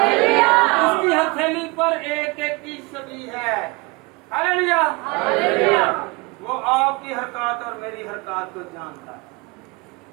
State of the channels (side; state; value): left; quieter; 26.3 dB